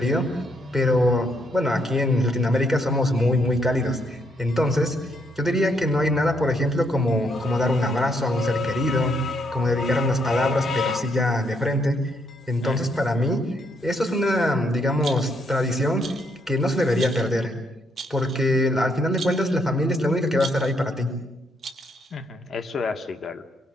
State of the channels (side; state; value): both; normal; correlation 0.74